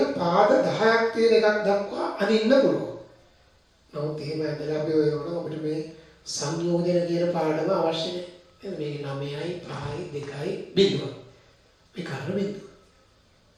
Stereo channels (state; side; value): identical; both; correlation 1.00